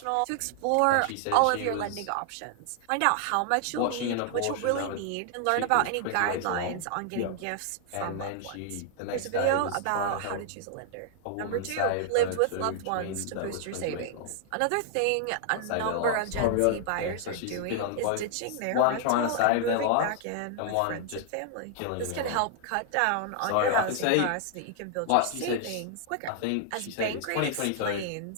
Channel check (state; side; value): different; both; correlation 0.00